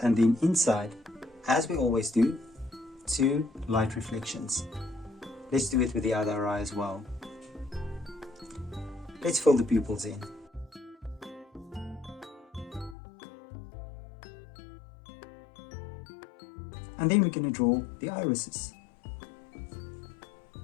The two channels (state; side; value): drops out; right; at 13.0 s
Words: and then inside, as we always do, two light reflections. Let's do it with the other eye as well. Let's fill the pupils in. And then we're going to draw the irises.